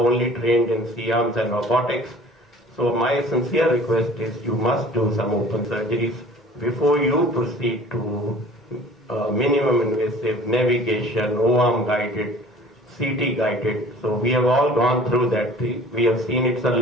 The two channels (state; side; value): normal; both; correlation 0.48